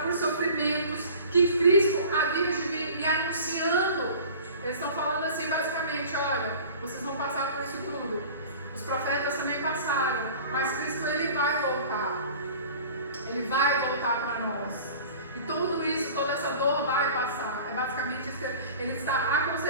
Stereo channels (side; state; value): both; inverted; correlation -0.42